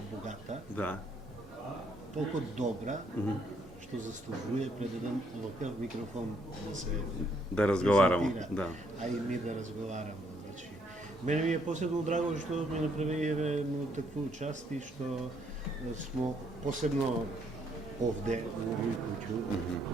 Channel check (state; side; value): normal; both; correlation 0.70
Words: богата, Да. толку добра, што заслужува пред еден ваков микрофон да се Да разговарамо, презентира, да. а и ми да разговарамо. Значи, мене ми е посебно драго што ми направиве такву част и што смо посебно овде у овој куќу,